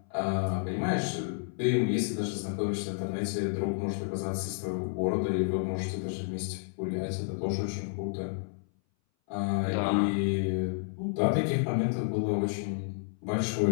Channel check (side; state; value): right; silent; 57 dB below the other